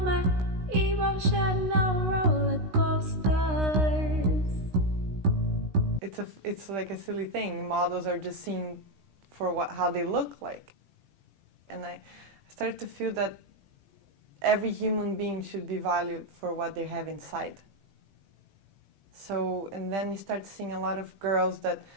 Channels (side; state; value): left; late; 16 ms